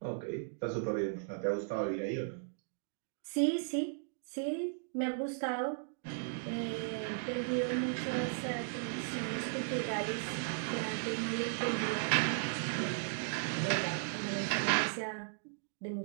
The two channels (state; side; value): silent; left; digital silence